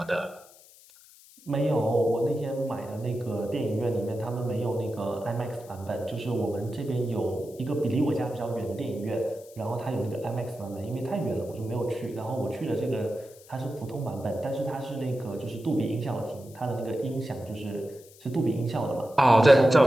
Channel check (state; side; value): noise; left; hiss, 23 dB below the sound